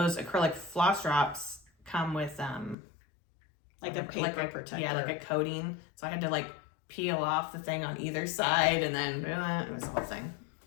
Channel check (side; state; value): right; drops out; at 2.8 s